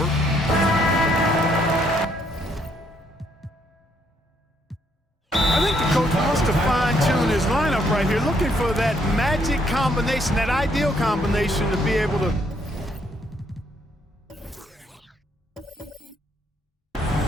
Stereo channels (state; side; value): normal; both; correlation 0.70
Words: I think the coach wants to fine-tune his lineup right here, looking for that magic combination, that ideal combination to be able to